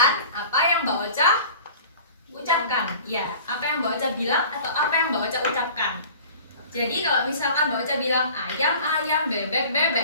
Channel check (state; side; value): inverted; both; correlation -0.44